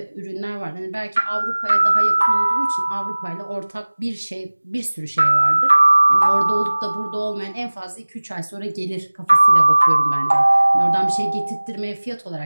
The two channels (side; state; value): both; inverted; correlation -1.00